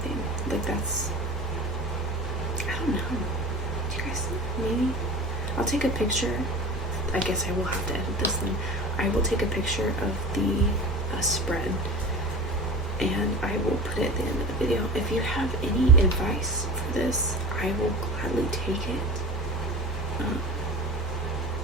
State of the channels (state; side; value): normal; both; correlation 0.35